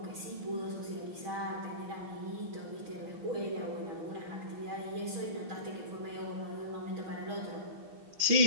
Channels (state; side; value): late; left; 6.3 ms